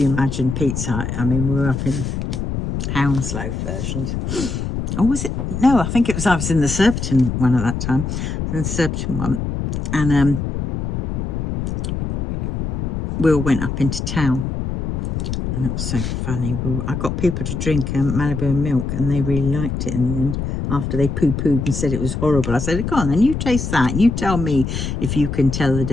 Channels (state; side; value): noise; left; rumble, 3 dB below the sound